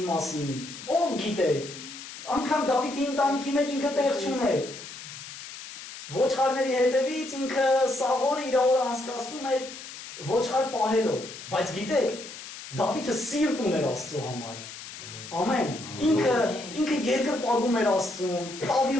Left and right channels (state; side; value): noise; left; hiss, 13 dB below the sound